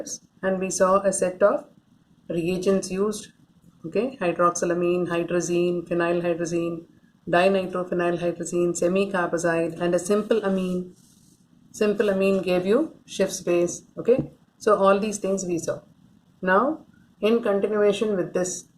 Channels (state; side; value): identical; both; correlation 1.00